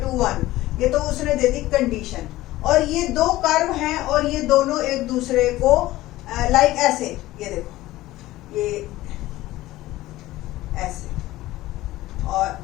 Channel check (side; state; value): right; quieter; 16.8 dB